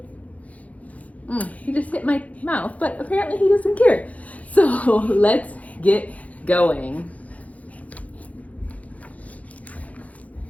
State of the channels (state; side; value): late; right; 0.069 ms